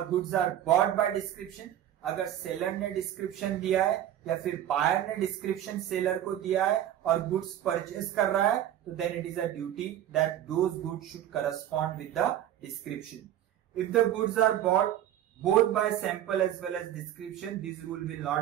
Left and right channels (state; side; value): quieter; left; 11.6 dB